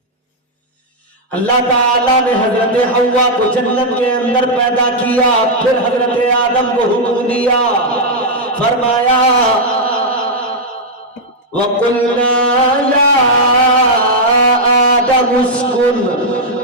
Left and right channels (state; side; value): normal; both; correlation -0.03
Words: اللہ تعالیٰ نے حضرت حوا کو جنت کے اندر پیدا کیا، پھر حضرت آدم کو حکم دیا، فرمایا وَقُلْنَا يَا آدَمُ اسْكُنْ